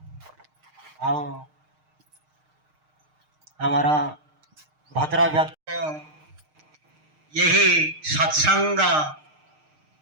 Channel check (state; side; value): late; left; 6.5 ms